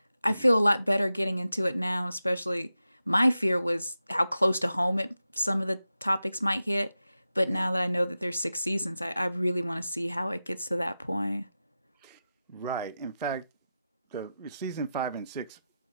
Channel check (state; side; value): inverted; both; correlation -0.92